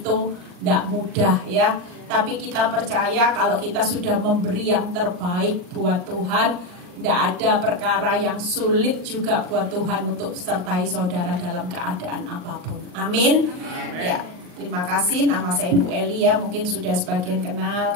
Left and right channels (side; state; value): left; late; 39 ms